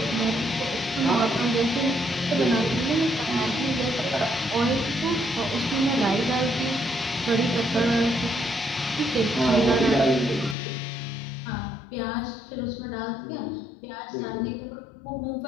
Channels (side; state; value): right; drops out; at 10.6 s